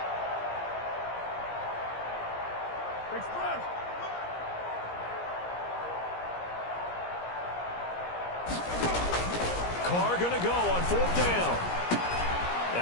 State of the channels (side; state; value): right; late; 17 ms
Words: Carr going to go on 4th down.